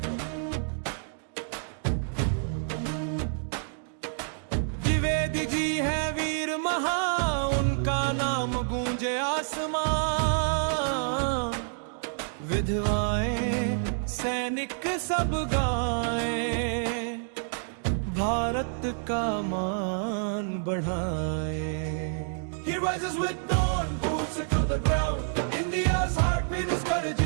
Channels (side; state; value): left; silent; digital silence